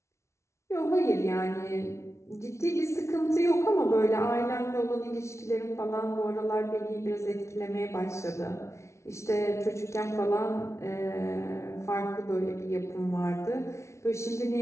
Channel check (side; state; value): right; late; 0.13 ms